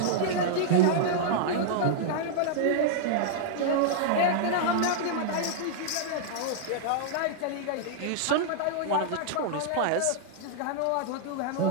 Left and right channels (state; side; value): different; both; correlation -0.01